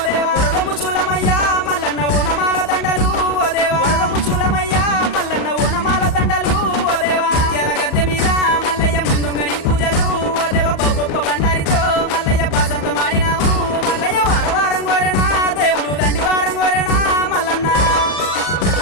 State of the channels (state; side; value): late; right; 38 ms